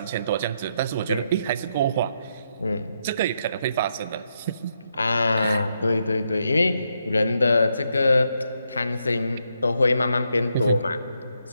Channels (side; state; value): both; inverted; correlation -0.80